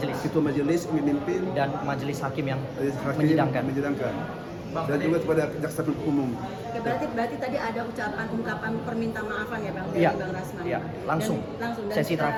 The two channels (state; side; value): identical; both; correlation 1.00